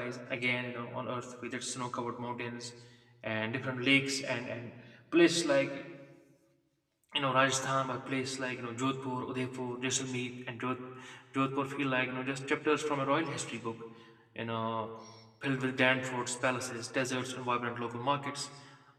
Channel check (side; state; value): both; identical; correlation 1.00